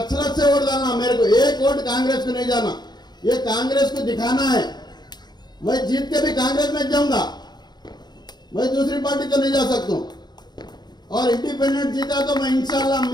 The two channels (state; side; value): late; right; 0.20 ms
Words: से वोट डालना, मेरे को 1 वोट कांग्रेस को नहीं जाना। ये कांग्रेस को दिखाना है, मैं जीत के भी कांग्रेस में जाऊंगा, मैं दूसरी पार्टी तो नहीं जा सकता हूं। और इंडिपेंडेंट जीता तो मैं इंशाल्लाह